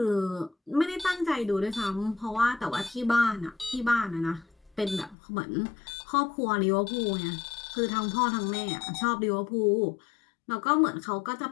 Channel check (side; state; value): right; drops out; at 5.2 s